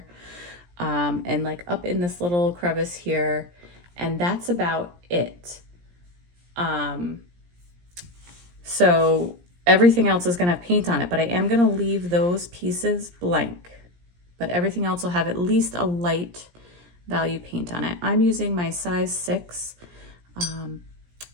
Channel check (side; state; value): left; late; 17 ms